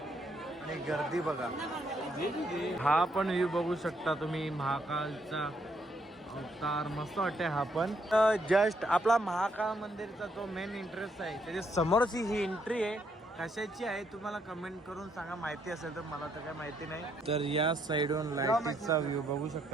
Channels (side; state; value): both; normal; correlation 0.73